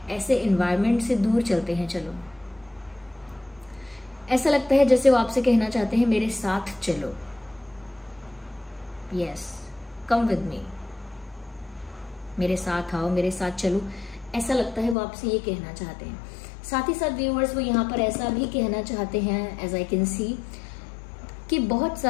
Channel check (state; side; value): drops out; right; at 15.0 s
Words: ऐसे एनवायरनमेंट से दूर चलते हैं, चलो। ऐसा लगता है जैसे वो आपसे कहना चाहते हैं, मेरे साथ चलो, यस, कम विद मी, मेरे साथ आओ, मेरे साथ चलो। ऐसा लगता है वो आपसे ये कहना चाहते हैं। साथ ही साथ व्यूअर्स वो यहाँ पर ऐसा भी कहना चाहते हैं, एज आई कैन सी, कि बहुत